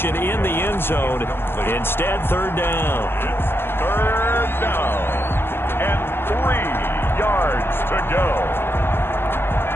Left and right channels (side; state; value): right; late; 0.11 ms